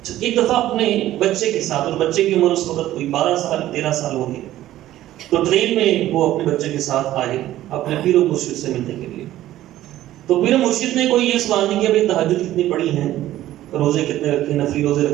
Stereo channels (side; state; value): left; quieter; 14.0 dB